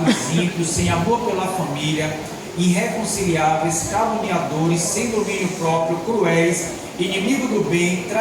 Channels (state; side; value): identical; both; correlation 1.00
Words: ímpios, sem amor pela família, irreconciliáveis, caluniadores, sem domínio próprio, cruéis, inimigos do bem,